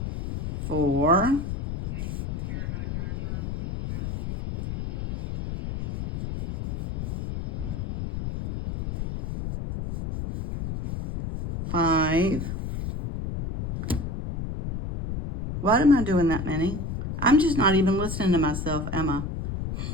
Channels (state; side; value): noise; left; rumble, 5 dB below the sound